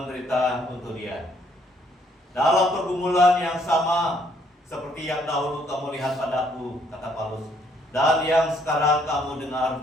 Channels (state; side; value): normal; both; correlation 0.67